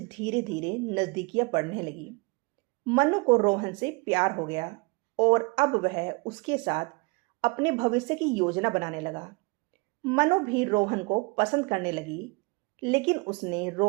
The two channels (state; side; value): quieter; left; 27.8 dB